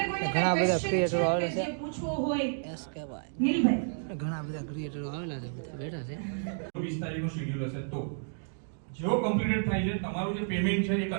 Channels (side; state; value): left; silent; digital silence